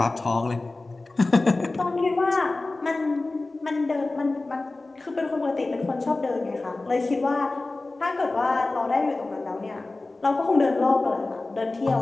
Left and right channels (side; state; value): right; quieter; 3.2 dB